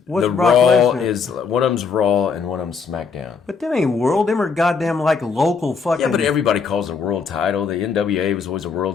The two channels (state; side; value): quieter; right; 5.4 dB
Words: What's the Brock Raw Lesnar? is one of them's Raw and one of them's SmackDown. But them ain't world. Them are goddamn like local fucking. Yeah, but everybody calls it a world title. The NWA was always a